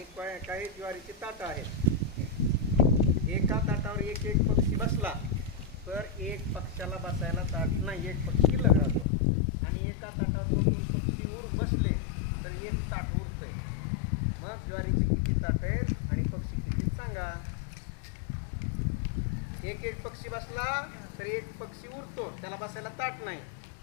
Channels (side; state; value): right; drops out; at 9.1 s